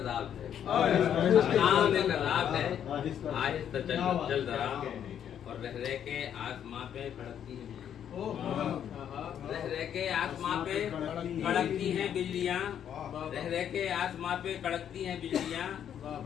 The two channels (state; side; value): quieter; right; 9.3 dB